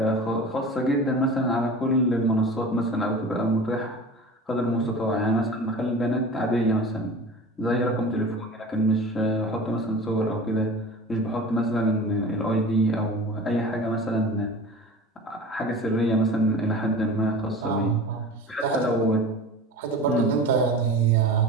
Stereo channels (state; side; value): normal; both; correlation 0.36